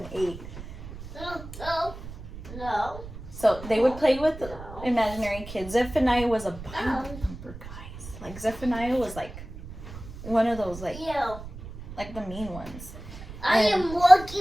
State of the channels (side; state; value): right; noise; rumble, 13 dB below the sound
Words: 8. No. So they would play with imaginary kids. Zephaniah was a Bible thumper, guys. Like Zephaniah was like one of those like the mean ones. I am